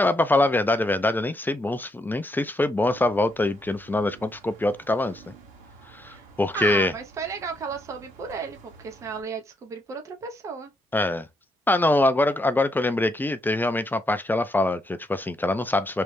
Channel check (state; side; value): normal; both; correlation 0.77